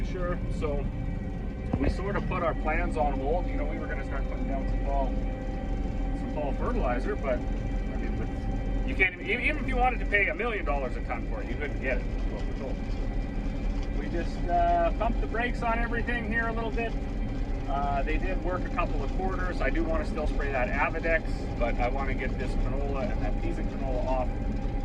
sure. So we sort of put our plans on hold. We were going to start putting down some fall fertilizer, but I mean, you can't even if you wanted to pay $1 million a ton for it, you couldn't get it. That's what we're told. We just pumped the brakes on everything here a little bit. They did work a couple of quarters. I do want to still spray that Avidex, but I want to get this canola and that piece of canola off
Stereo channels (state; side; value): identical; both; correlation 1.00